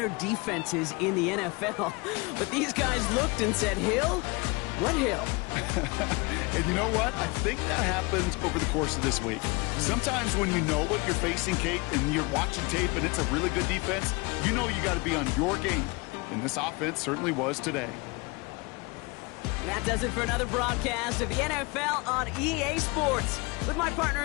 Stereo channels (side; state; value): right; quieter; 26.6 dB